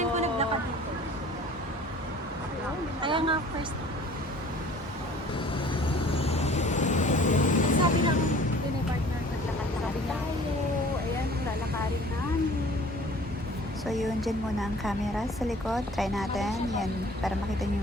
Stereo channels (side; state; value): both; normal; correlation 0.49